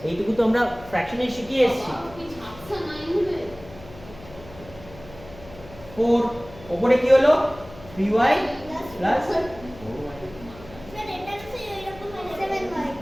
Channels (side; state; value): left; noise; hum, 18 dB below the sound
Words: এইটুকু তো আমরা ফ্র্যাকশনে শিখিয়ে এসেছি 4 উপরে কি হলো 3y প্লাস 4y স্যার এটা তো এরকম 7y